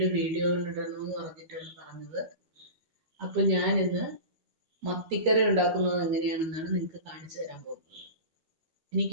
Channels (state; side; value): late; left; 13 ms